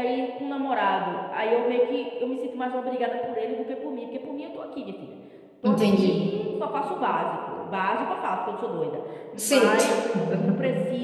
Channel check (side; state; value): both; identical; correlation 1.00